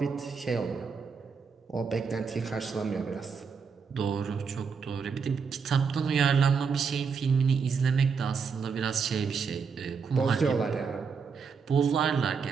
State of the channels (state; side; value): quieter; left; 5.7 dB